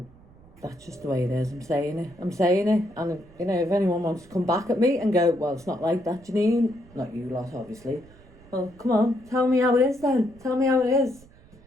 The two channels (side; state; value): right; noise; rumble, 25 dB below the sound